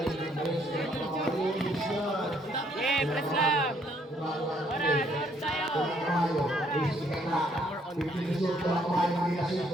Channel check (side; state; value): both; normal; correlation 0.67